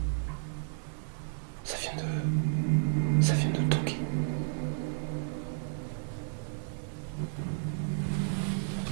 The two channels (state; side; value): silent; left; digital silence